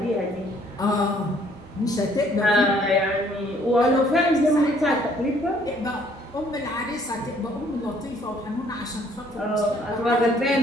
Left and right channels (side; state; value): both; normal; correlation 0.62